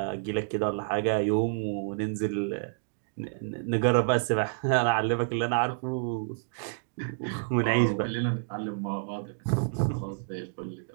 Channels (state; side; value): silent; left; digital silence